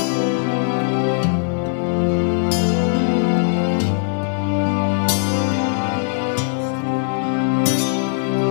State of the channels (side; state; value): right; silent; 66 dB below the other